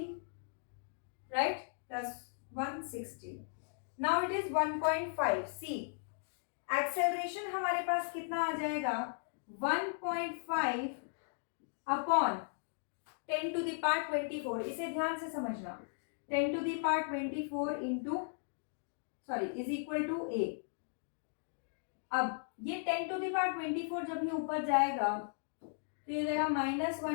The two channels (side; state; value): right; silent; digital silence